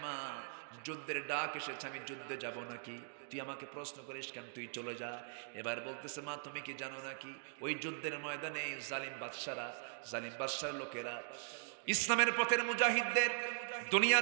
মা, যুদ্ধের ডাক এসেছে, আমি যুদ্ধে যাব নাকি? তুই আমাকে প্রশ্ন করিস কেন? তুই চলে যা। এবার বলতেছে, মা, তুমি কি জানো নাকি ওই যুদ্ধের ময়দানে জালিম বাদশার লোকেরা ইসলামের পথের মুজাহিদদের দুনিয়া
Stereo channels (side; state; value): left; silent; digital silence